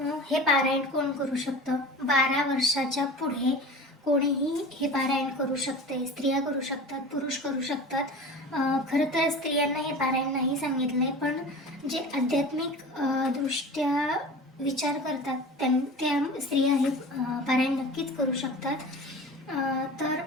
हे पारायण कोण करू शकतं? 12 वर्षाच्या पुढे कोणीही हे पारायण करू शकते. स्त्रिया करू शकतात, पुरुष करू शकतात. खरं तर स्त्रियांना हे पारायण नाही सांगितलंय, पण जे आध्यात्मिक दृष्ट्या विचार करतात त्या स्त्रिया हे पारायण नक्कीच करू शकतात. तर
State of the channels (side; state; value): both; normal; correlation 0.36